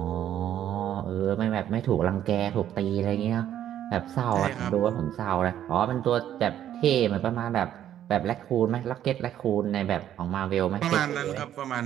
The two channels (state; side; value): quieter; left; 11.0 dB